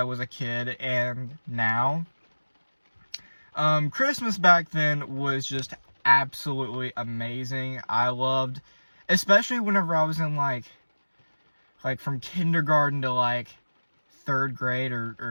was a kid and now. Christmas back then was just absolutely amazing. I loved, especially whenever I was in like from kindergarten to like 3rd grade or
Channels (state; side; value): inverted; both; correlation -1.00